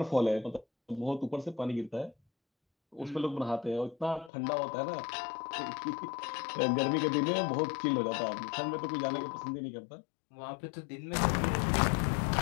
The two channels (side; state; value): right; drops out; at 4.3 s